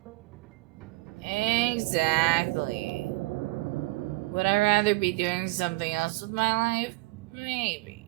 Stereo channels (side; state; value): left; quieter; 22.2 dB